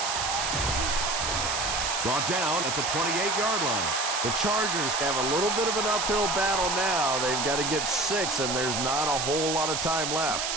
Brought down at the 28-yard line. The Chargers have a little bit of an uphill battle now. They've got to get 6, and there's not a whole lot of time left.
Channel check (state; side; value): noise; right; hiss, 1 dB below the sound